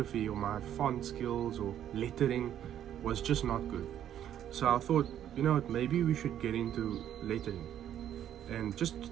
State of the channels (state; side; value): quieter; left; 10.6 dB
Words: or my font skills or lettering was just not good. So I thought, you know what, maybe we should get into lettering. And